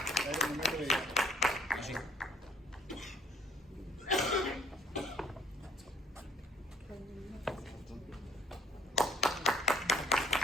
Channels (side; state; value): both; normal; correlation 0.58